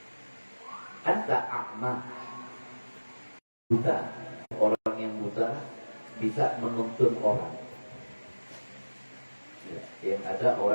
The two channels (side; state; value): both; inverted; correlation -1.00